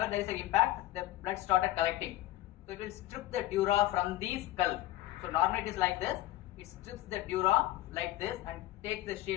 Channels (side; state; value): right; quieter; 15.6 dB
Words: there is an impact, the blood started collecting. So it will strip the dura from the skull. So normally it is like this. It strips the dura like this and takes the